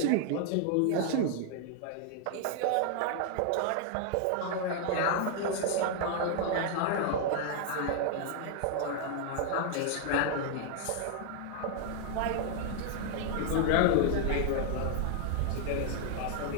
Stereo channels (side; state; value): both; different; correlation 0.00